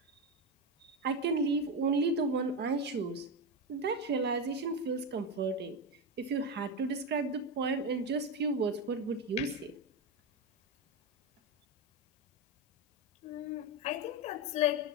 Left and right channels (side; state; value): both; normal; correlation 0.13